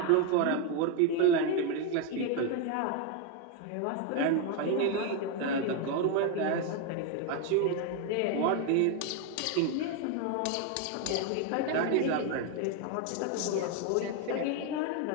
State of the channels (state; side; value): different; both; correlation 0.02